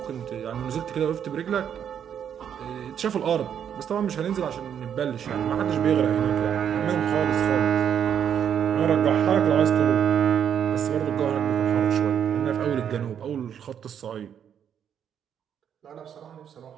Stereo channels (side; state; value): left; quieter; 8.7 dB